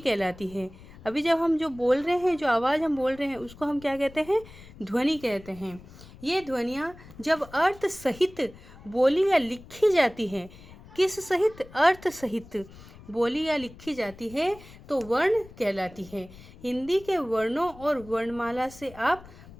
है। अभी जब हम जो बोल रहे हैं, जो आवाज़ हम बोल रहे हैं, उसको हम क्या कहते हैं? ध्वनि कहते हैं। ये ध्वनियाँ जब अर्थ सहित बोली या लिखी जाती है, किस सहित? अर्थ सहित बोली या लिखी जाती है तो वर्ण कहलाती है। हिंदी के वर्णों और वर्णमाला से आप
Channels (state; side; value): noise; left; rumble, 19 dB below the sound